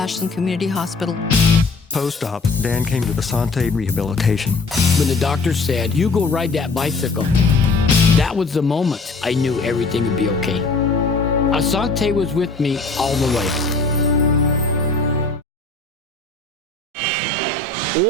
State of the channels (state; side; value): quieter; right; 3.7 dB